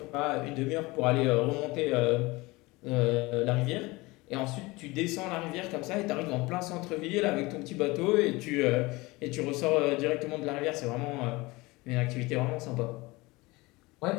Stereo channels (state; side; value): quieter; right; 22.6 dB